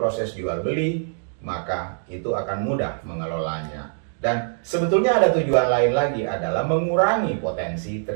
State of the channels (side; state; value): left; silent; digital silence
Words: jual beli, maka itu akan mudah mengelolanya. Dan sebetulnya ada tujuan lain lagi, adalah mengurangi potensi